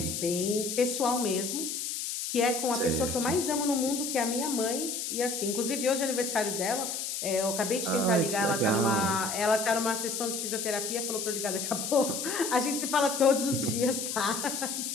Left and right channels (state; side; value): noise; left; hiss, 4 dB below the sound